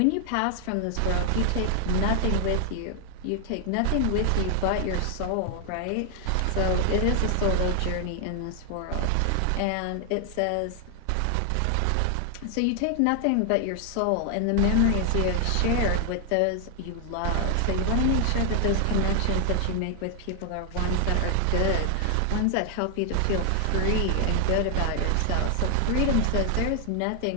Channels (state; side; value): different; both; correlation 0.00